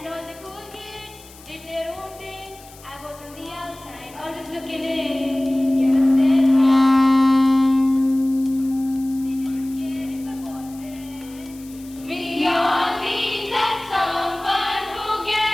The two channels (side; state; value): left; noise; hiss, 22 dB below the sound